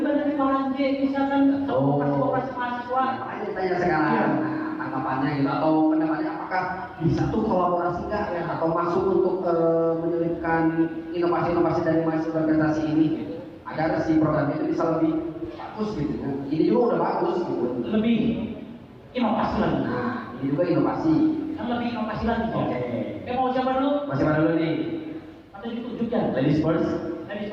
dari Malang J, misalkan koperasi mahasiswa. Makanya ditanya sekarang, nah, tanggapannya gitu atau pendapatnya apakah bisa tuh kolaborasi nggak ya atau masuk untuk menyelipkan inovasi-inovasi dari mahasiswa organisasi ini gitu. Agar si program itu bisa lebih bagus gitu ya. Ini juga udah bagus gitu. Lebih inovasi lagi. Nah, ini juga inovasi. Kan lebih inovasi lagi. Oke. Mau siapa dulu? Masih mana dulu nih? Atau ditunjukkan? Ladies first. Ladies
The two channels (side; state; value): both; identical; correlation 1.00